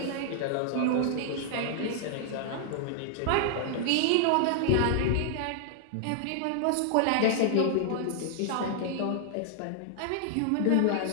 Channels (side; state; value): both; different; correlation 0.00